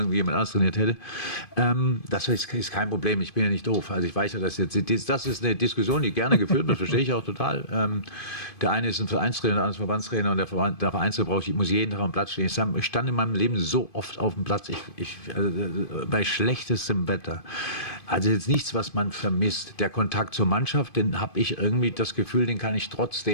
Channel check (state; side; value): late; right; 2.5 ms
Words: anders trainiert hätte. Das ist kein Problem. Ich bin ja nicht doof. Also ich weiß ja, das ist eine Diskussion, die gerne geführt wird, verstehe ich auch total. Der eine ist ein Vereinstrainer, der andere ist Verbandstrainer und der Vereinstrainer muss jeden Tag am Platz stehen. Ich stand in meinem Leben so oft auf dem Platz, bei schlechtestem Wetter. Also jetzt nichts, was man vermisst. Der Kontakt zur Mannschaft, den habe ich irgendwie das Gefühl, den kann ich